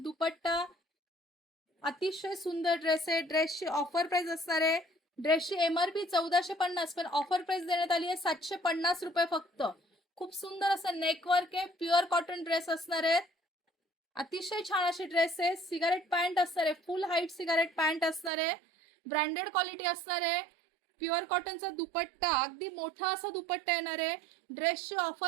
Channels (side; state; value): left; drops out; at 18.3 s